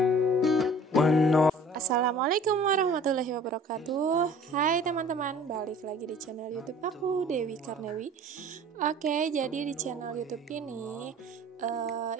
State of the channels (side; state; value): both; normal; correlation 0.48